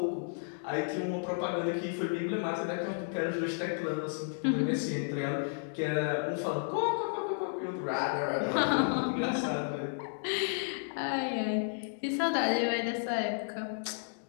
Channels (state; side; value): silent; right; digital silence